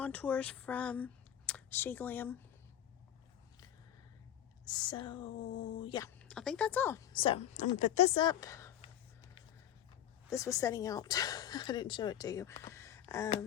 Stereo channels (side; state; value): right; quieter; 10.9 dB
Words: from She Glam. So yeah, I think that's all. So I'm gonna put this up. This was setting out. I didn't show it to you.